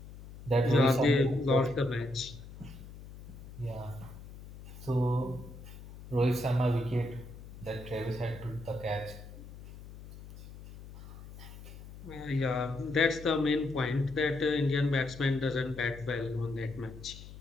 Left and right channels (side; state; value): left; noise; hum, 15 dB below the sound